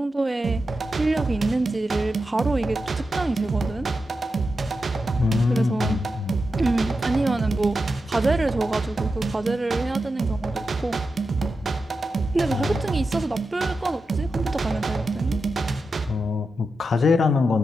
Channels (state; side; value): normal; both; correlation 0.89